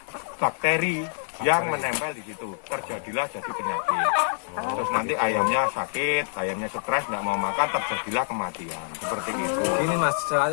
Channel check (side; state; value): right; silent; digital silence